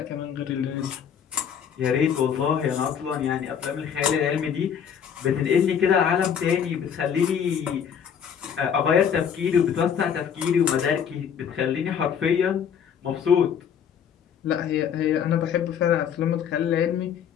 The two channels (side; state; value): right; quieter; 7.9 dB